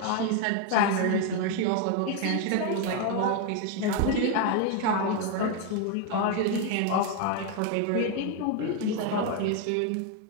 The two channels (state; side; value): different; both; correlation 0.01